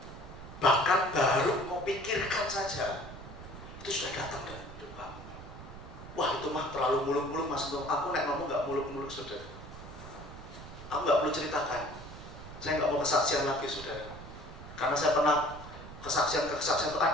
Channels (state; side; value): noise; right; rumble, 14 dB below the sound